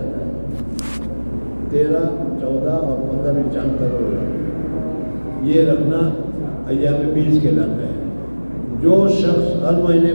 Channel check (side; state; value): both; inverted; correlation -1.00